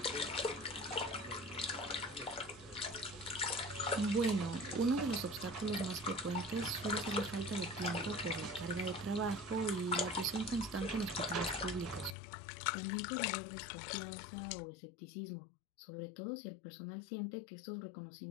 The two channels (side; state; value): right; drops out; at 12.2 s